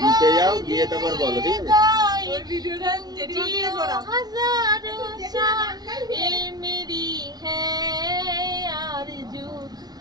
নিচে যাও, গিয়ে তারপর বলো, ঠিক আছে? ওই ভিডিওটা জেঠিমা দিয়ে করা।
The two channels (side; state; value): left; late; 0.19 ms